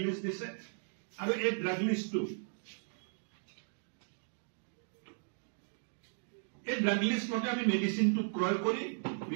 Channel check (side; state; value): left; silent; digital silence